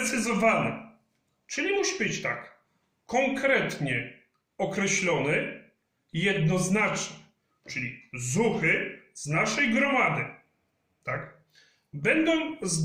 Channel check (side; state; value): both; identical; correlation 1.00